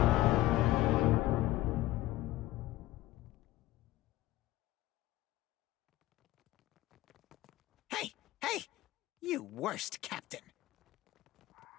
Hey! Hey! You worst captain!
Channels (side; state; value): right; quieter; 16.5 dB